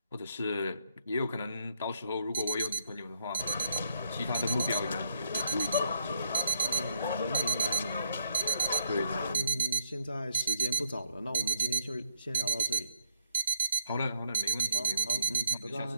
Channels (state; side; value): inverted; both; correlation -0.69